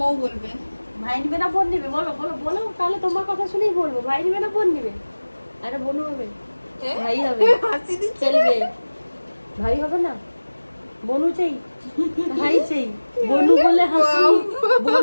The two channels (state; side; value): inverted; both; correlation -1.00